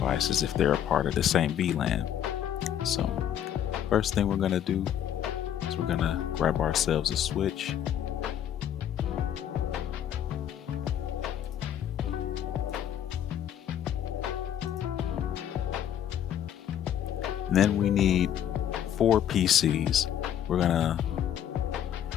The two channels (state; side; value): quieter; right; 10.1 dB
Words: if they're a part of the same VLAN. So first thing we're going to do is we're going to grab ourselves a switch. And then we need 4 PCs. We're going to,